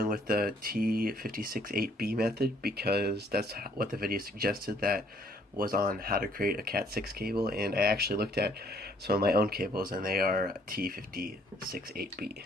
with the T568B method because that's what the video suggested that was on how to create a Cat6 cable, and I actually looked at some of my own cables and they are T568B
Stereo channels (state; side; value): normal; both; correlation 0.63